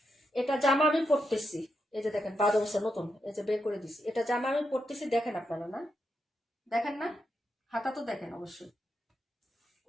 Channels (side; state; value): both; normal; correlation 0.84